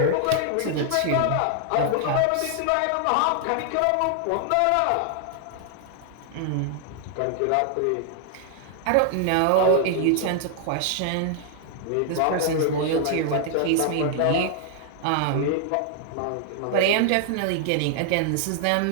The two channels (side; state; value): both; different; correlation 0.00